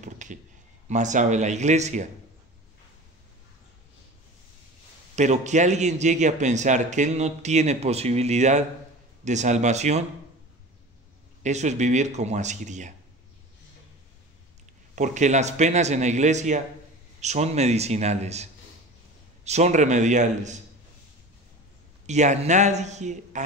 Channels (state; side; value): normal; both; correlation 0.35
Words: más sabe la Iglesia. Pero que alguien llegue a pensar que él no tiene posibilidad de salvación, eso es vivir como Asiria. Porque las penas en la Iglesia son medicinales, son remediales. Y a nadie,